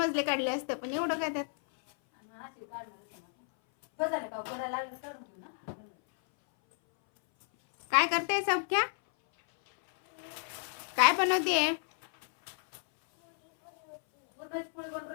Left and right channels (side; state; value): right; silent; 57 dB below the other